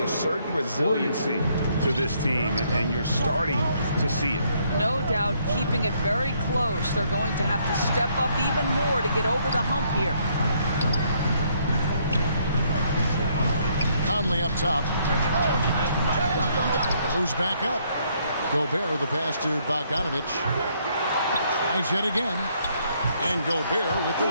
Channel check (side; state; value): both; inverted; correlation -0.69